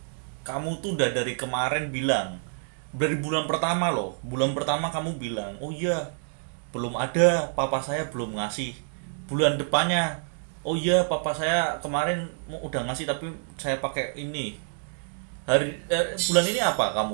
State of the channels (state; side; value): silent; left; digital silence